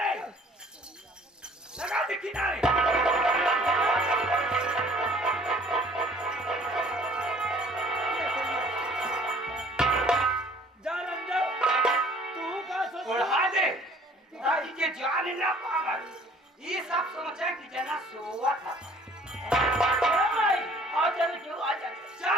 लगा दे किनारे जा रंजन तू का सोच उड़ा दे ताकि के जान ना पावे ये सब सोचे कि जना सोवा था भाई आ चल क्यों आ जा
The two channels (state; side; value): normal; both; correlation 0.55